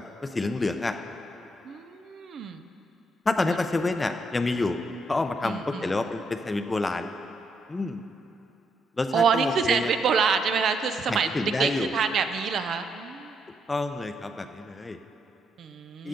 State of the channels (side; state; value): both; normal; correlation 0.77